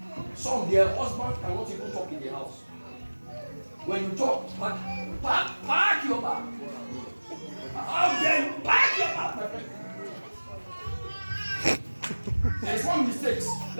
Some, their husband cannot even talk in the house. When you talk, pack your bag. How dare you pack your bag, my friend? There is one mistake.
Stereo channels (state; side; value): inverted; both; correlation -1.00